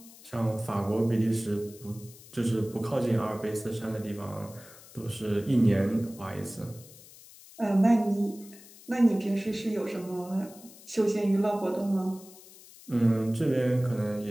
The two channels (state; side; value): noise; left; hiss, 21 dB below the sound